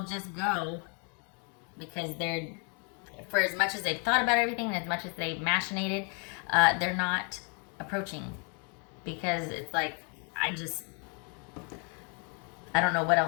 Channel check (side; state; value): right; quieter; 37.2 dB